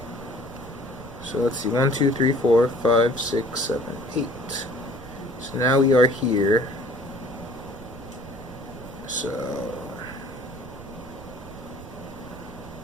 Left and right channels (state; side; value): noise; right; rumble, 16 dB below the sound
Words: So let's see. 1, 2, 3, 4, 5, 6, 7, 8. So now we are here. So